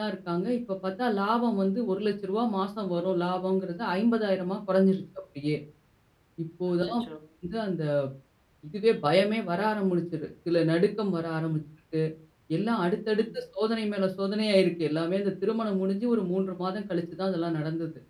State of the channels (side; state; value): both; identical; correlation 1.00